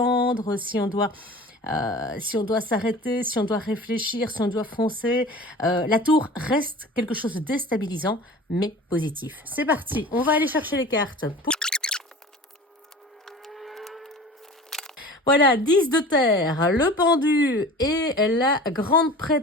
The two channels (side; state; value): both; normal; correlation 0.39